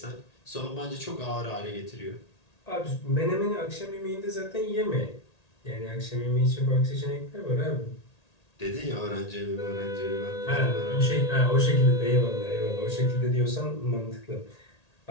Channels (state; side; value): late; right; 1.8 ms